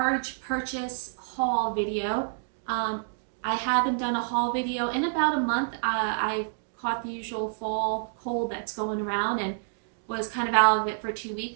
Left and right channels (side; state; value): left; silent; digital silence